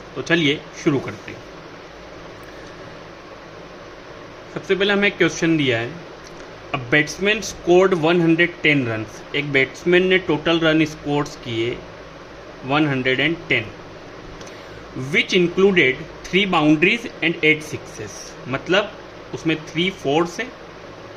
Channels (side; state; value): both; identical; correlation 1.00